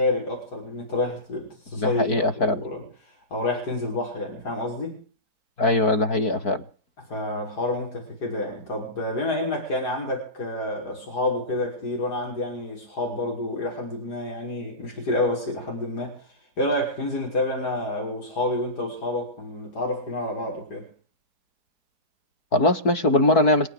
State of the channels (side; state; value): right; late; 4.6 ms